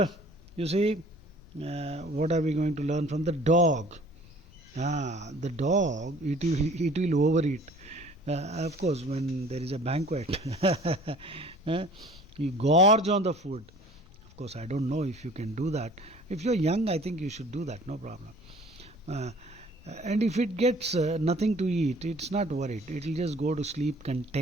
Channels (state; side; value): noise; left; rumble, 23 dB below the sound